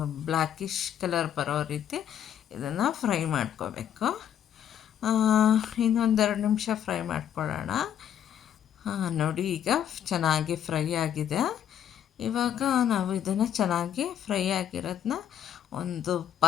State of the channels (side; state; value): right; quieter; 9.8 dB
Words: ಬ್ಲ್ಯಾಕಿಶ್ ಕಲರ್ ಬರೋ ರೀತಿ ಇದನ್ನು ಫ್ರೈ ಮಾಡ್ಕೋಬೇಕು. ಇನ್ನೊಂದೆರಡು ನಿಮಿಷ ಫ್ರೈ ಮಾಡ್ಕೊಳ್ಳೋಣ. ನೋಡಿ ಈಗ ಚೆನ್ನಾಗಿ ಫ್ರೈ ಆಗಿದೆ. ಇವಾಗ ನಾವು ಇದನ್ನು ಚೆನ್ನಾಗಿ ಫ್ರೈ ಆಗಿರೋದನ್ನ ಒಂದು